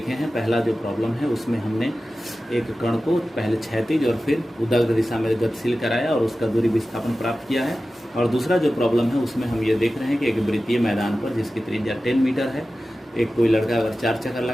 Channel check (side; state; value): both; normal; correlation 0.95